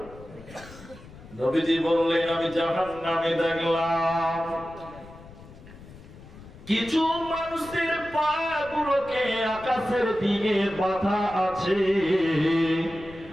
নবীজি বললেন আমি জাহান্নামে দেখলাম কিছু মানুষের পা গুলোকে আকাশের দিকে বাঁধা আছে,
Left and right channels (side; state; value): left; noise; rumble, 19 dB below the sound